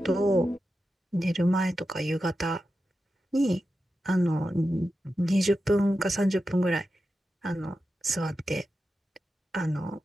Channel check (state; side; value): normal; both; correlation 0.91